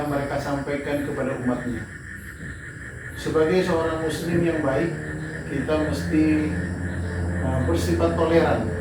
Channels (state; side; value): identical; both; correlation 1.00